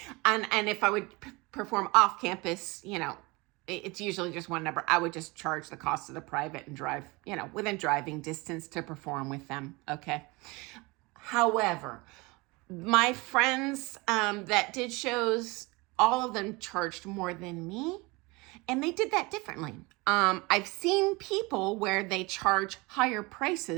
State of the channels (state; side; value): quieter; left; 24.9 dB